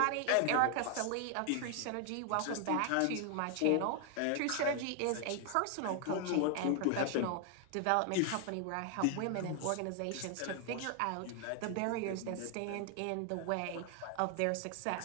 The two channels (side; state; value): both; different; correlation 0.00